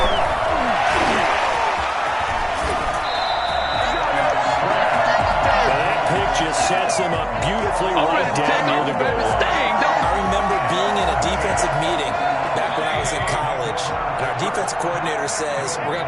Just sets him up beautifully right down near the goal. I remember being in a defensive meeting back when I was in college, and our defensive coordinator says, we're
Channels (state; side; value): identical; both; correlation 1.00